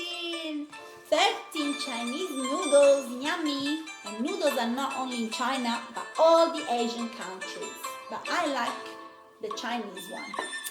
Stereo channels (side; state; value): both; identical; correlation 1.00